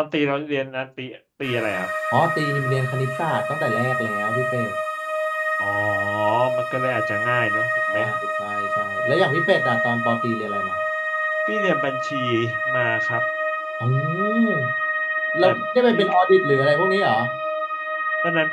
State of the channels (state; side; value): identical; both; correlation 1.00